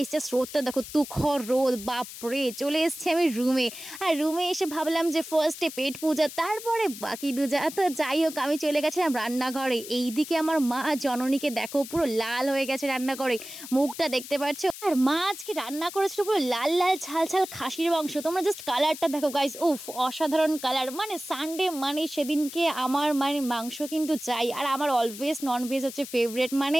জাস্ট রোদটা দেখো, তুখর রোদ, বাপরে। চলে এসেছি আমি রুমে, আর রুমে এসে ভাবলাম যে ফার্স্টে পেট পূজা, তারপরে বাকি দুজা। তো যাই হোক, আমি চলে গেছিলাম রান্নাঘরে। এইদিকে আমার মা জননীকে দেখো, পুরো লাল হয়ে গেছে রান্নাঘরে, মুখটা দেখতে পাচ্ছ। আর মা আজকে রান্না করেছিল পুরো লাল লাল ঝাল ঝাল খাসির মাংস। তোমরা জাস্ট কালারটা দেখো গাইস, উফ, অসাধারণ কালার। মানে সানডে মানে সেদিনকে আমার মানে মাংস কিন্তু চাই, আর আমার অলওয়েজ ননভেজ হচ্ছে ফেভারিট, মানে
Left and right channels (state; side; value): noise; left; hiss, 12 dB below the sound